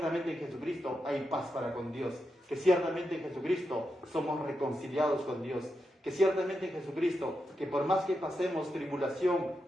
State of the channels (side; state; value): both; normal; correlation 0.86